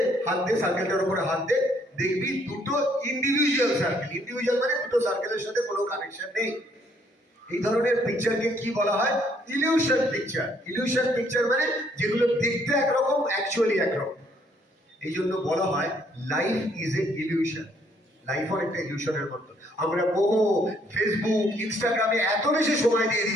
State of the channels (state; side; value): normal; both; correlation 0.67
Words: দে সার্কেলটার উপরে হাত দে, দেখবি 2টো ইন্ডিভিজুয়াল সার্কেল। ইন্ডিভিজুয়াল মানে 2টো সার্কেলের সাথে কোনো কানেকশন নেই। এই ধরনের পিকচারকে কি বলা হয়? Illusion picture. ইলিউশন পিকচার মানে যেগুলো দেখতে একরকম, অ্যাকচুয়ালি একরকম। এই জন্য বলা হয় life is a illusion. Life অনেকটা ইলিউশনের মতো। আমরা বহু ফেসবুক, ইনস্টাগ্রামে এত বেশি সময় দিয়ে